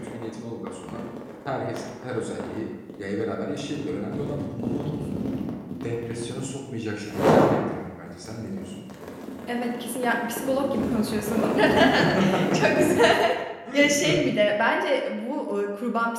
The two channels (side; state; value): both; identical; correlation 1.00